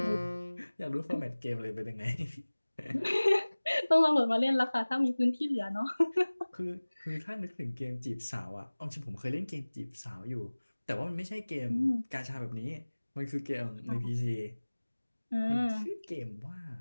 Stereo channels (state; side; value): inverted; both; correlation -1.00